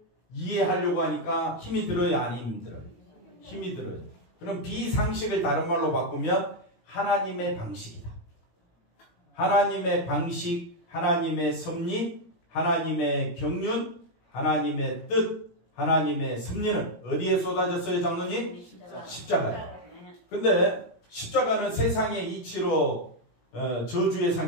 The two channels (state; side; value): late; right; 18 ms